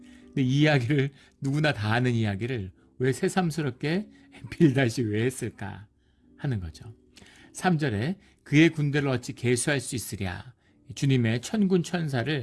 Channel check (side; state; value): both; identical; correlation 1.00